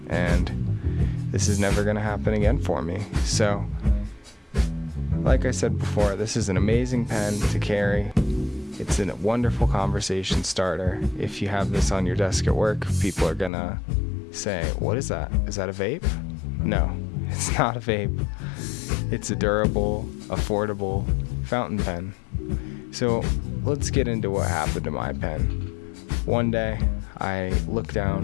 and this is never going to happen again for me. So, like I said before, this is an amazing pen to carry. It's a wonderful conversation starter. If you have this on your desk at work, people are going to say, "What is that? Is that a vape?" No, it's not a vape. It's a durable, affordable fountain pen. So let's get into what happened to my pen. One day, I look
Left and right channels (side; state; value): right; drops out; at 13.5 s